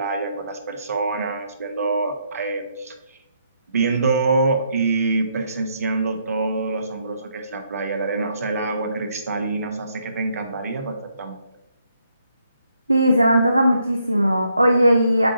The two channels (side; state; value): both; inverted; correlation -0.74